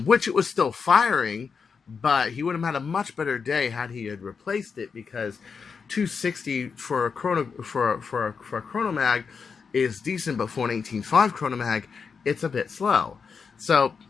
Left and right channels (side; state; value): right; quieter; 5.7 dB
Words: which it was still firing, but he would have had a much better day had he had replaced it, because 260 for a Kronomag is decent, but for an 18.5 Kronomag, it's a bit slow. So,